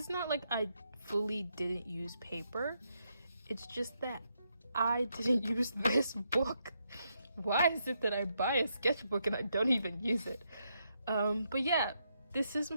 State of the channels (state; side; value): inverted; both; correlation -0.79